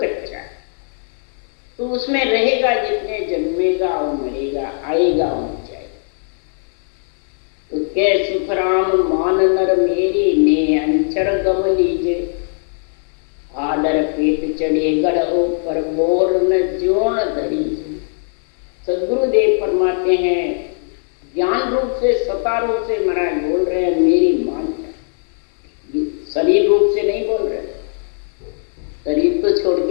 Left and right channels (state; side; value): silent; right; 62 dB below the other